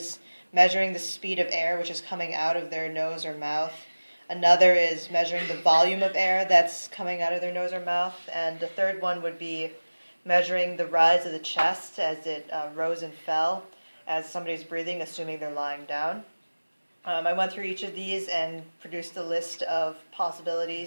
measuring the speed of air which is coming out of their nose or mouth. Another is measuring the volume of air that's coming out of their nose or mouth. And the third one would be measuring the rise of the chest as it rose and fell as somebody's breathing, assuming they're lying down. I went through each of these and produced a list of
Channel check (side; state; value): both; inverted; correlation -1.00